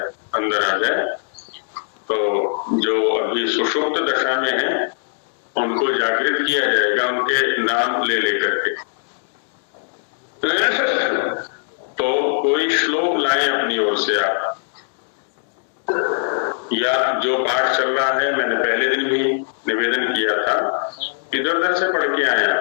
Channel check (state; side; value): silent; right; digital silence